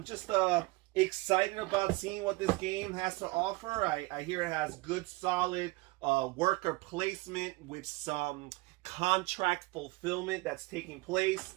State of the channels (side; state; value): left; quieter; 23.7 dB